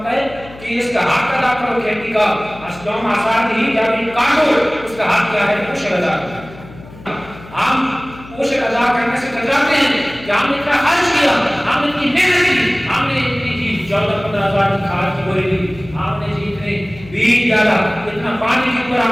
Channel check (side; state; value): left; noise; hum, 18 dB below the sound